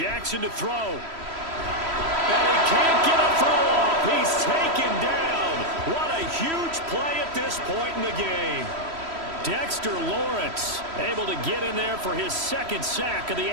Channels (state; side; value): late; left; 3.1 ms